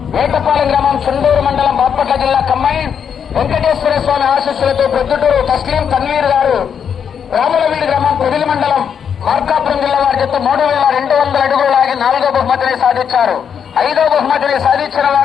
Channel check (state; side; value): quieter; right; 7.6 dB